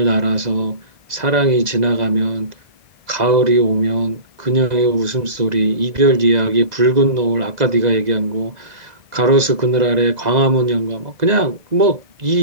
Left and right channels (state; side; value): late; left; 2.0 ms